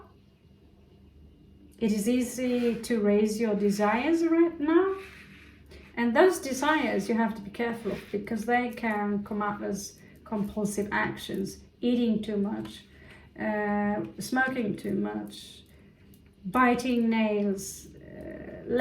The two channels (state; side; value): identical; both; correlation 1.00